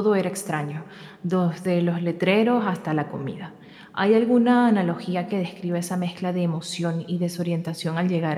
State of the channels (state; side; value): identical; both; correlation 1.00